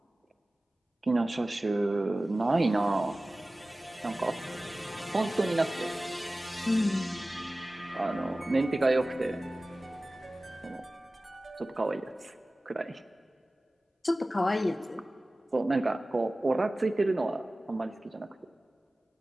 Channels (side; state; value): both; normal; correlation 0.97